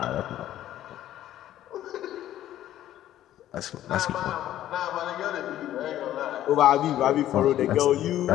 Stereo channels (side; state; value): right; quieter; 12.7 dB